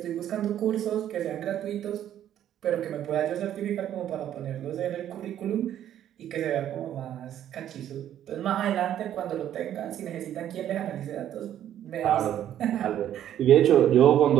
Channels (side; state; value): left; quieter; 11.0 dB